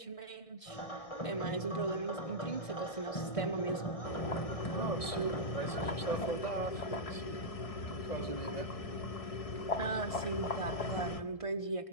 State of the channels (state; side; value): late; right; 1.6 ms